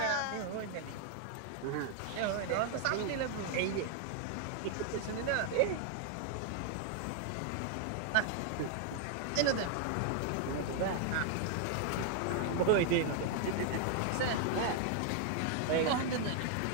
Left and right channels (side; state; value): both; different; correlation 0.00